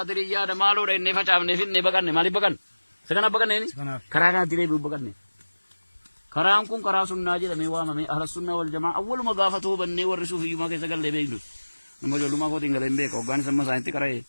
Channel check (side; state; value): both; inverted; correlation -1.00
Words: دمالو رين نفاجأ نفين نبكان مالي بكان سكنا بكان نيني كرانا تري بكان نيني كرام كون كراسون ناجي دميوا مامي أهل السنة والجماعة أول ما قافته بني ورسوا في يوم كيسة قال لبيجلس نمو جلو ما كو تينغ لمبه كوغان سما ساينتي كراي